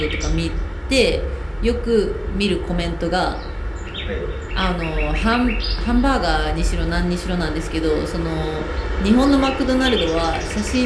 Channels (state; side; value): identical; both; correlation 1.00